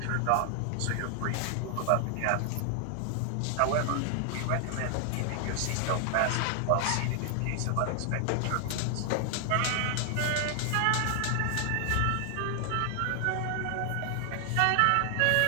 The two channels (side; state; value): both; different; correlation 0.00